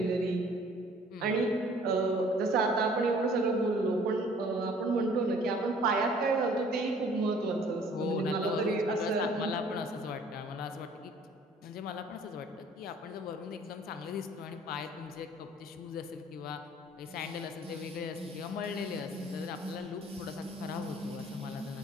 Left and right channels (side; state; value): both; normal; correlation 0.55